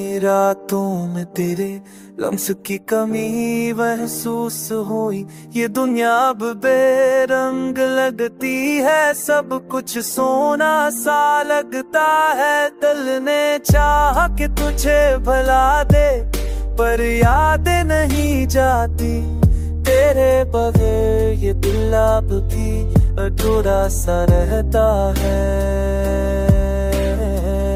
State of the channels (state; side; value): identical; both; correlation 1.00